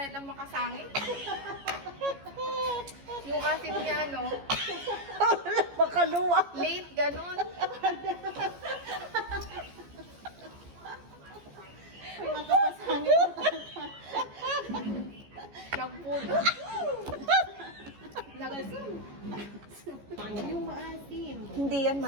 ng makasangit. Yung asim niya, no? Makaluwa. Late, ganun. Nagpulo. Nagasim. Yung maasim. Hindi yan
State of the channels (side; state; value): left; late; 14 ms